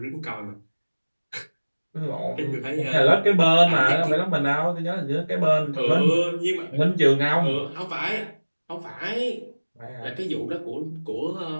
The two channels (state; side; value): inverted; both; correlation -1.00